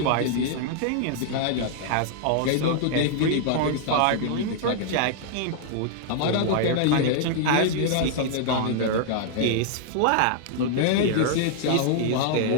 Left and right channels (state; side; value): different; both; correlation -0.01